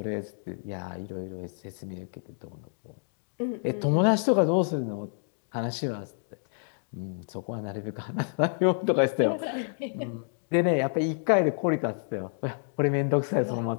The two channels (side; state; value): right; silent; digital silence